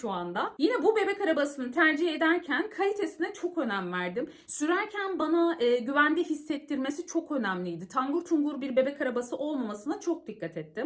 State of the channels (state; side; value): identical; both; correlation 1.00